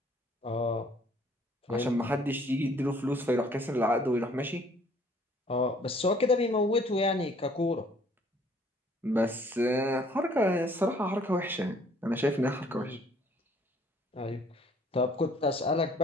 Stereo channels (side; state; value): both; normal; correlation 0.59